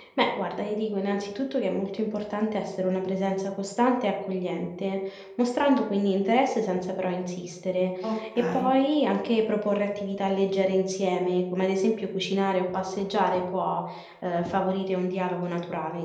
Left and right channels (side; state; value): both; identical; correlation 1.00